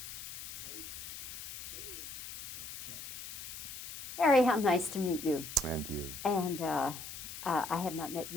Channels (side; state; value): left; noise; hiss, 9 dB below the sound